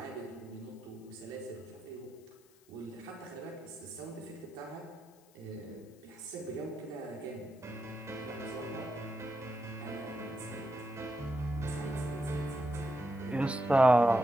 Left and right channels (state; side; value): noise; left; hiss, 29 dB below the sound